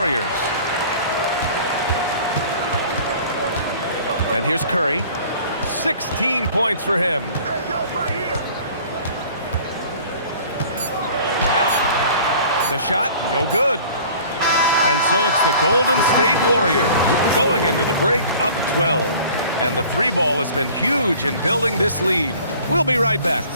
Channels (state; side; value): inverted; both; correlation -0.48